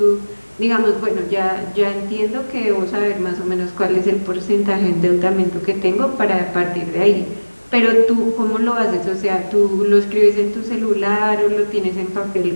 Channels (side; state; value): both; inverted; correlation -1.00